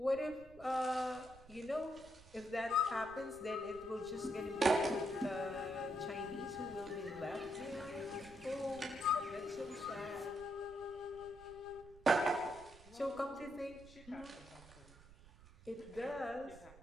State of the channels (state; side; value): noise; right; rumble, 20 dB below the sound